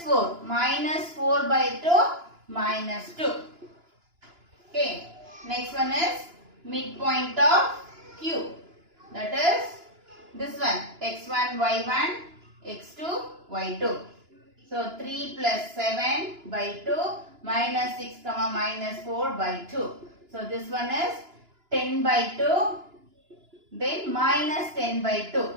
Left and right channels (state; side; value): late; left; 2.9 ms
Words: 4. Minus 4 by 2, minus 2. Okay. Next one is midpoint of Q. That is this one, x1, y1, x2, y2. So 3 plus 7 by 2, minus 6 comma minus 4 by 2. So this one is 10 by 2, then minus 10 by 2.